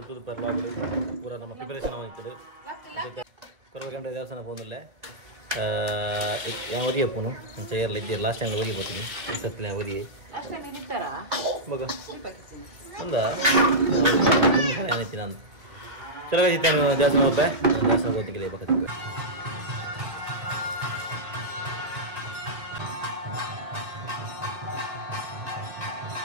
per vlog ಪೂರಾ ನಮ್ಮ preparation ಆಗಿತ್ತು. Coral ಕಂಡ್ರೆ ದೇವಸ್ಥಾನ ಹೋಗಲ್ಲ. yang wadi apa nu? Mencari lagi last yang wadi apa ini? Setelah yang wadi. Last yang ini pera? Baga. Anda? Kamu yang ini nanti. Coba kita jasa mau apa? Jasa mau tinggal apa kita?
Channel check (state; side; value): late; left; 2.1 ms